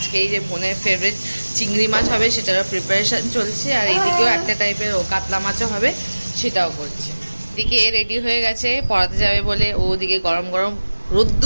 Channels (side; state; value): both; inverted; correlation -1.00